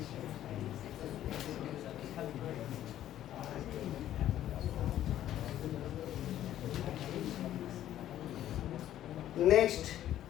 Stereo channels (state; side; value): quieter; right; 12.2 dB